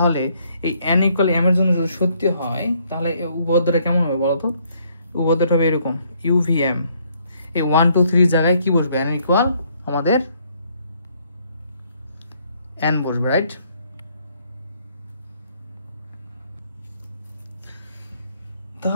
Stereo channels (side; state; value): both; inverted; correlation -0.68